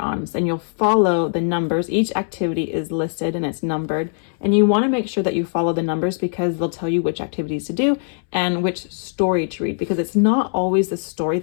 and you'll follow the numbers. Each activity is listed and it's numbered. And you want to make sure that you follow the numbers because they'll tell you which activities to do and which story to read, because it's not always the story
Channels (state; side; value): silent; right; 65 dB below the other